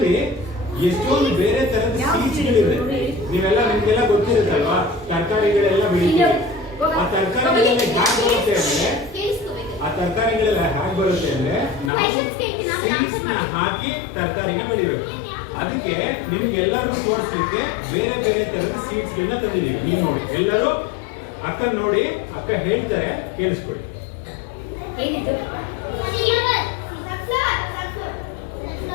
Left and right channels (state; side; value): drops out; right; at 11.9 s